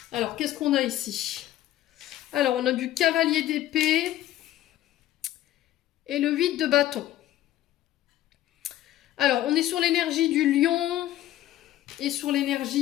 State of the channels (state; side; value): quieter; right; 13.7 dB